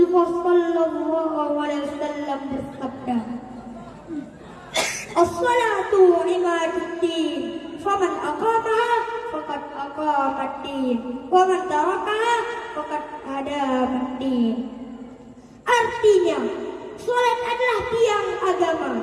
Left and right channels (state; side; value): identical; both; correlation 1.00